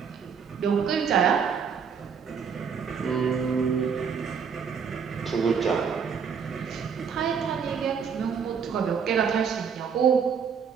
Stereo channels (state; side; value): quieter; left; 6.6 dB